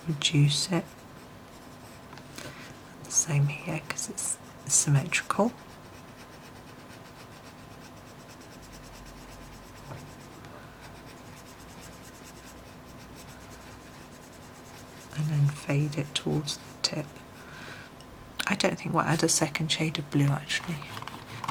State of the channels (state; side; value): identical; both; correlation 1.00